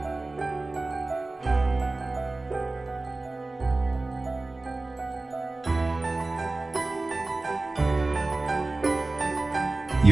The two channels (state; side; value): quieter; left; 3.2 dB